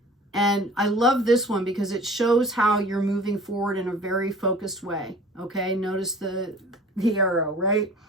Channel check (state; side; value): normal; both; correlation 0.45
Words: And I love this one because it shows how you're moving forward in a very focused way. Okay, notice the arrow, right?